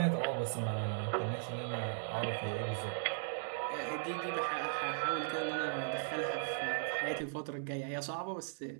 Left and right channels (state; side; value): silent; left; digital silence